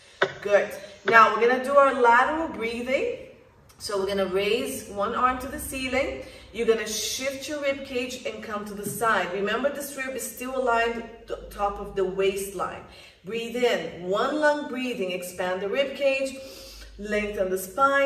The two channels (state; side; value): identical; both; correlation 1.00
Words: Good. Now we're gonna do our lateral breathing. So we're gonna raise one arm to the ceiling. You're gonna shift your rib cage and come to the side. Remember, this rib is still aligned to the top of the waistline. Breathe in, one lung breathing, expand the rib cage, lengthen the